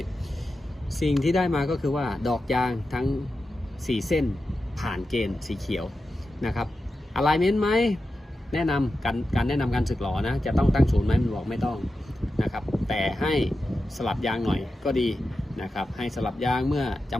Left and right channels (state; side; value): normal; both; correlation 0.91